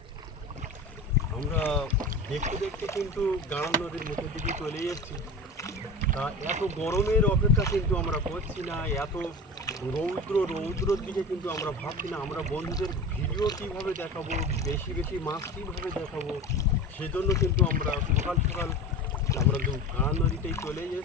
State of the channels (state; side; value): normal; both; correlation 0.31